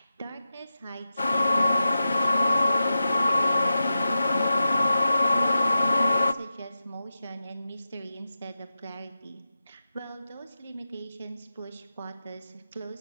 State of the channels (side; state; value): both; inverted; correlation -0.91